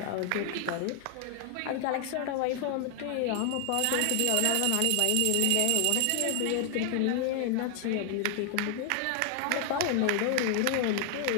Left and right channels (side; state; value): both; different; correlation 0.00